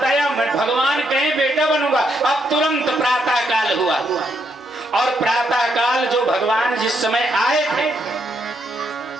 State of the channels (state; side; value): normal; both; correlation 0.77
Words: आया, भगवान कहे बेटा बनूंगा। अब तुरंत प्रातः काल हुआ और प्रातः काल जो भगवान जिस समय आए थे,